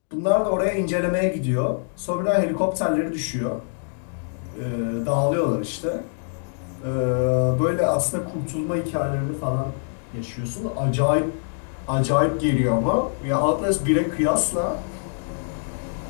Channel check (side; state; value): right; silent; digital silence